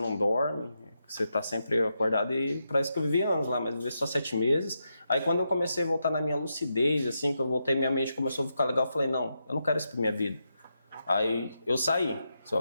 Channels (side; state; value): both; inverted; correlation -0.85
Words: dorme, você está sempre acordado e parece que eu vivi anos lá, mas vivi só 7 meses. Aí quando eu comecei a voltar na minha lucidez, assim, que eu voltei, minha mente começou a ficar legal, eu falei, não, eu não quero isso pra minha vida. Aí eu saí, só